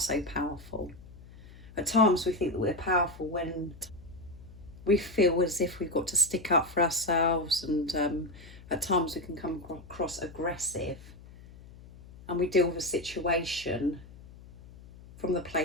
powerful. At times we think that we're powerful when we feel as if we've got to stick up for ourselves, and at times we can come across aggressive, and we deal with a situation from the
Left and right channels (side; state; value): left; noise; hum, 19 dB below the sound